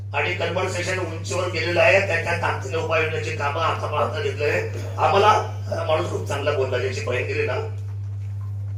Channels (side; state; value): both; identical; correlation 1.00